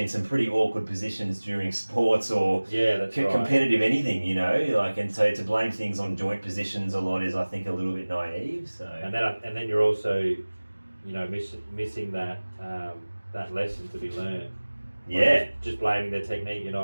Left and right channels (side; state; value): both; inverted; correlation -1.00